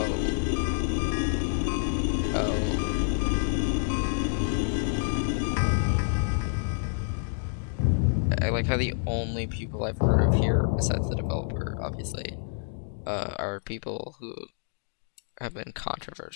Oh. I like how the only people I've heard of here, besides the developer, obviously, are people who have been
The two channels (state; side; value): silent; right; digital silence